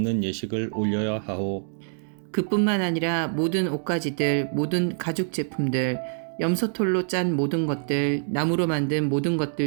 예식을 올려야 하오. 그뿐만 아니라 모든 옷가지들, 모든 가죽 제품들, 염소털로 짠 모든 것들, 나무로 만든 모든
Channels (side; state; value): left; silent; digital silence